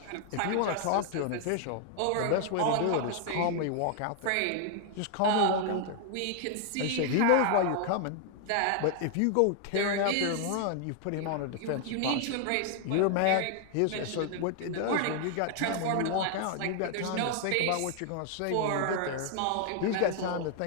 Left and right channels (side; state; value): both; different; correlation 0.00